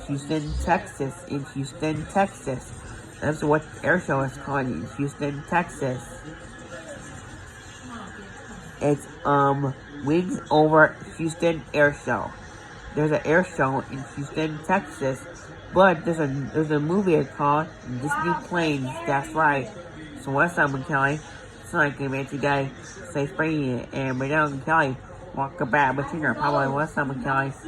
Houston, Texas. In Houston, Texas. That's what the air show is called in Houston, Texas. It's Wings Over Houston Air Show. There's an air show in Houston, Texas. But there's a movie called Disney Planes. That's right. So what's up, Kelly? So I can make you guys say spring and Madame Kelly walk back between her. Probably what's up, Kelly?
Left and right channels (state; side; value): identical; both; correlation 1.00